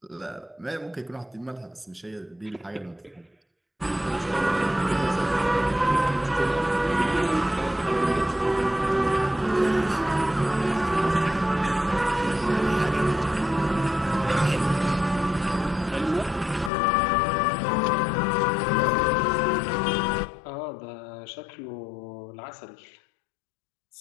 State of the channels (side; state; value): right; drops out; at 16.7 s